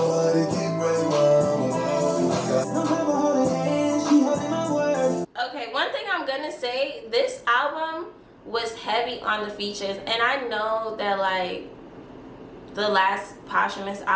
Okay, one thing I'm gonna say, this album was heavy on the features, and I know that like the last posthumous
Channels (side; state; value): both; identical; correlation 1.00